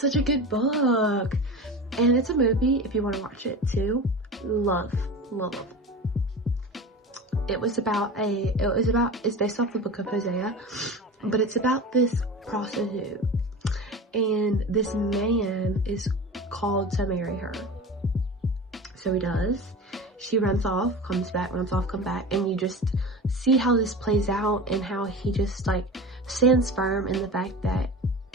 such a good book. And it's a movie if you want to watch it too. Love. It's based off the book of Hosea, but it's about this prostitute, and this man is called to marry her. So he does. She runs off, comes back, and you just see how this plays out, and how he just, like, stands firm in the fact that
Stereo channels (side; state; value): both; normal; correlation 0.32